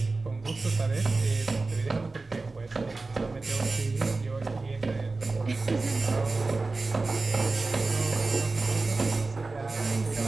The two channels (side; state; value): left; quieter; 3.6 dB